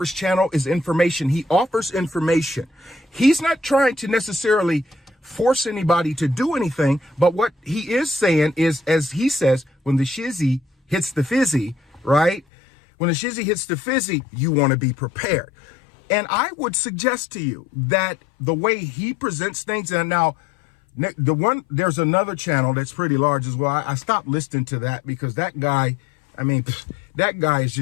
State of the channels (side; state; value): right; drops out; at 12.4 s